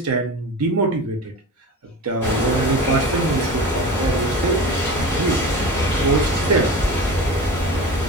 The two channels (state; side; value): normal; both; correlation 0.32